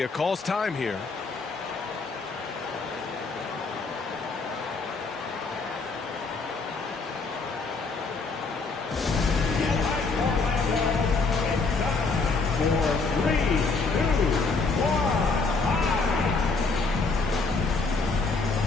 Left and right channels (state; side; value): quieter; right; 4.1 dB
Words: calls time here.